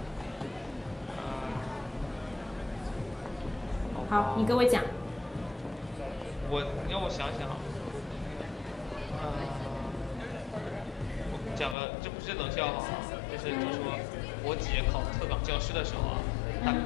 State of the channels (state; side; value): drops out; right; at 11.8 s